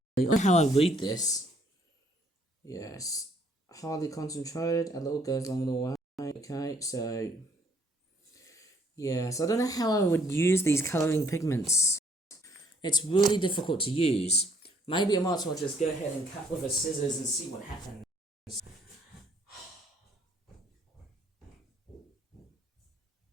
I don't know how I read this. Yes, hardly concentrated, a little goes along the way. Okay, so yes, I don't know how I would use these colouring pigments. It's really difficult to use. Maybe I might as well just go ahead and cut with a scissors and see what happens.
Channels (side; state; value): both; normal; correlation 0.64